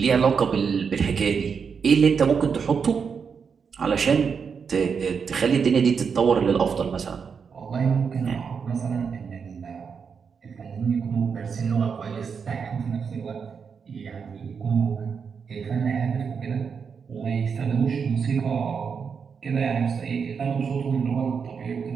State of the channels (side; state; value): left; quieter; 6.1 dB